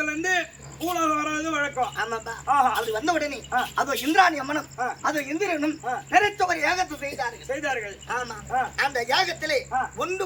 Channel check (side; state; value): both; identical; correlation 1.00